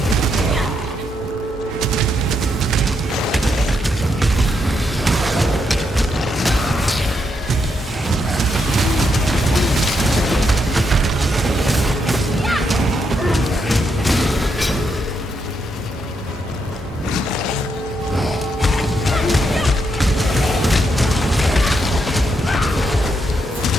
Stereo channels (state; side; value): normal; both; correlation 0.79